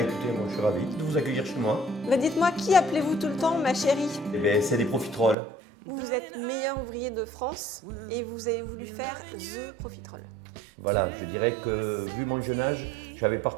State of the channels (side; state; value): left; drops out; at 5.4 s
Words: moi je suis ravi de vous accueillir chez moi. Dites-moi, qui appelez-vous tout le temps ma chérie? C'est des profiteroles. Vous êtes meilleur ouvrier de France et vous avez voulu faire The Profiterole. Voilà, je dirais que vu mon jeune âge, j'avais